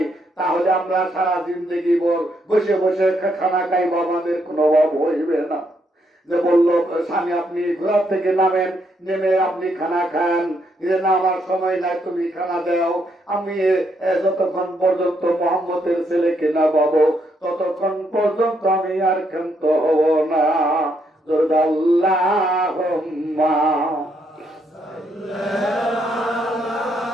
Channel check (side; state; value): both; normal; correlation 0.75